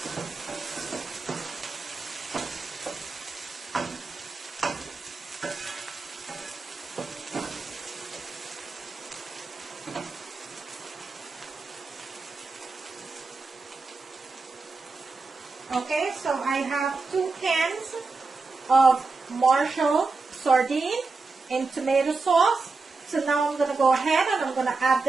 Okay, so I have 2 cans of Marshall sardine in tomato sauce. So now I'm going to go ahead and I'm going to add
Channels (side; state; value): left; quieter; 4.0 dB